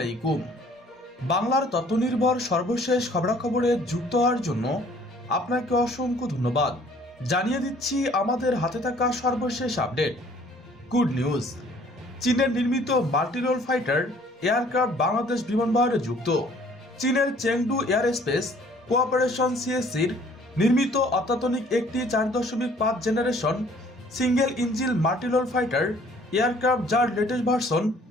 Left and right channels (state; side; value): normal; both; correlation 0.57